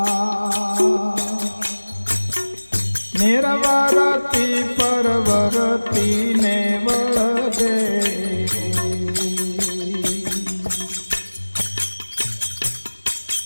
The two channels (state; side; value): inverted; both; correlation -1.00